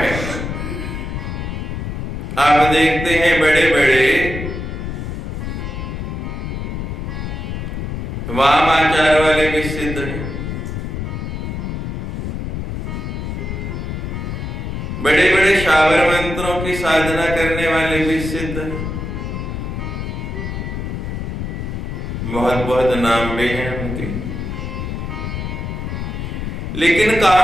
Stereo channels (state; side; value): noise; left; rumble, 4 dB below the sound